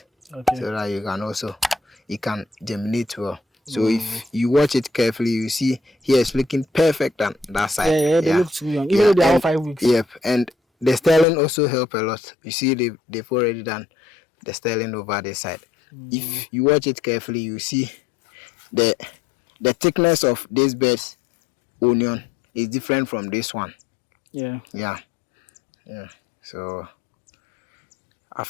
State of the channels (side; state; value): right; drops out; at 11.2 s